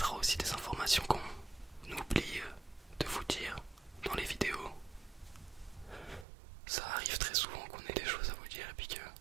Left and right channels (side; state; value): left; drops out; at 6.2 s